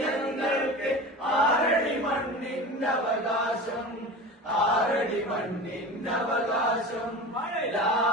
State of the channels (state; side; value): normal; both; correlation 0.32